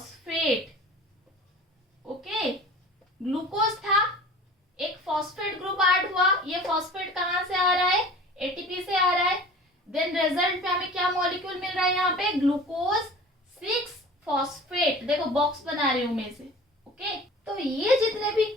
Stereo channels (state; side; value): normal; both; correlation 0.42